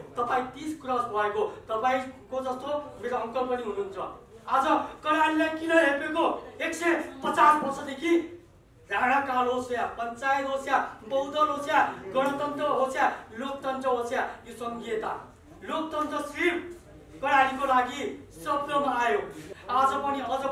तपाईँ 30 क्रस भएको, तपाईँको जस्तो मेरो अङ्कल पनि हुनुहुन्छ। आज कर्णालीलाई किन हेपेको? 150 वर्षदेखि राणाकाल होस् या पञ्चायत होस् या बहुदल होस् या गणतन्त्र होस् या लोकतन्त्र होस् या यो सङ्घीयता, लोकतन्त्र सिर्फ कर्णालीको लागि शब्दमा आयो। आज पनि अझ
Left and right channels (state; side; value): identical; both; correlation 1.00